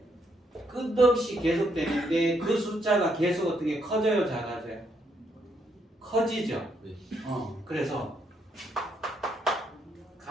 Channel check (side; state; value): both; normal; correlation 0.75